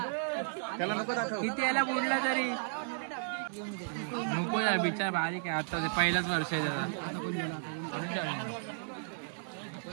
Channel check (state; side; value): silent; left; digital silence